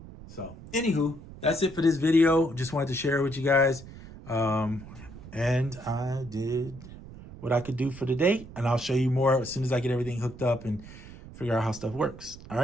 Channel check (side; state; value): right; noise; rumble, 16 dB below the sound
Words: So anywho, that's it for this video. Just wanted to share it with you guys. And I did what I could do for today, and I'll show you more as soon as I get everything hooked up and figure out how stuff works. All